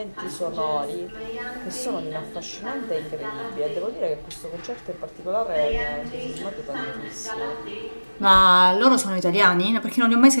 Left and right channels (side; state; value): both; inverted; correlation -1.00